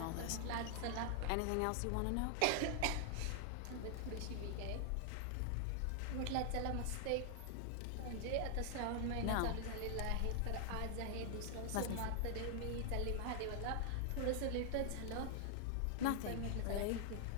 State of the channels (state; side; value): different; both; correlation 0.00